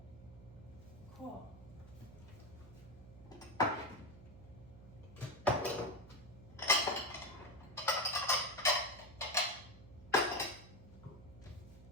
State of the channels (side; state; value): right; noise; hum, 18 dB below the sound